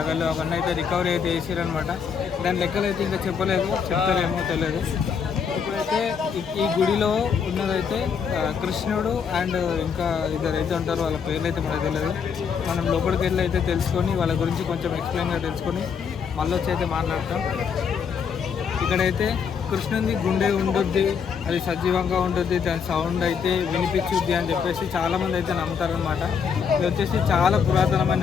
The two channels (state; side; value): quieter; right; 6.6 dB